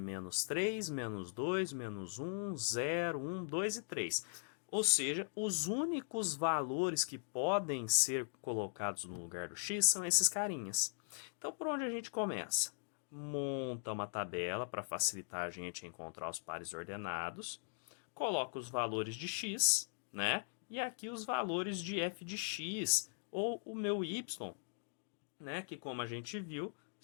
3, menos 2, menos 1, 0, 1, 2 e 3. Ou seja, os únicos valores que podem ser colocados no lugar do x são esses carinhas. Então, por onde a gente começa? Monta uma tabela para facilitar a gente encontrar os pares ordenados. Coloca os valores de x, né? E aqui os valores de f de x, ou o meu y, né? Que como a gente viu,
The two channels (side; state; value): right; silent; digital silence